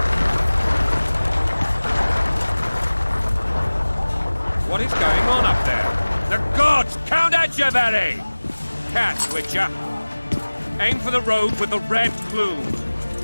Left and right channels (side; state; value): both; inverted; correlation -1.00